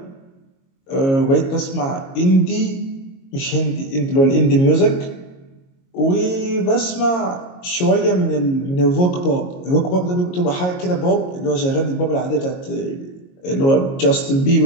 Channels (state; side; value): late; right; 22 ms